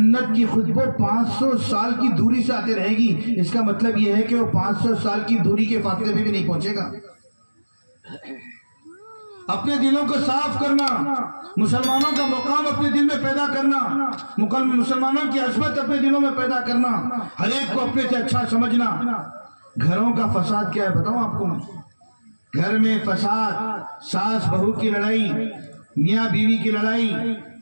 کی خوشبو 500 سال کی دوری سے آتے رہے گی. اس کا مطلب یہ ہے کہ وہ 500 سال کی دوری کے فاصلے میں بھی نہیں پہنچے گا. اپنے دلوں کو صاف کرنا, مسلمانوں کا مقام اپنے دل میں پیدا کرنا, مسلمانوں کی عظمت اپنے دلوں میں پیدا کرنا, ہر ایک کو اپنے سے اچھا سمجھنا. گھروں کا فساد کیا ہے بتاؤں آپ کو میں. گھر میں فساد، ساس بہو کی لڑائی، میاں بیوی کی لڑائی،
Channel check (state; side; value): inverted; both; correlation -1.00